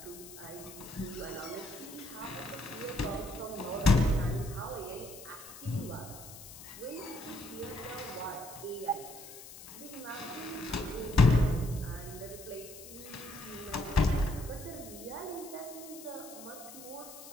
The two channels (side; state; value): left; noise; hiss, 15 dB below the sound